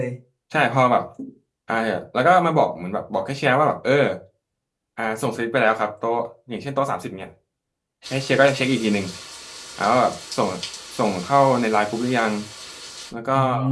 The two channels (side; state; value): both; identical; correlation 1.00